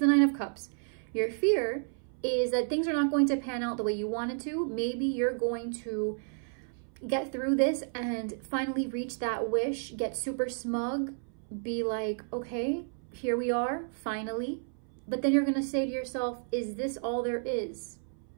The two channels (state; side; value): silent; left; 57 dB below the other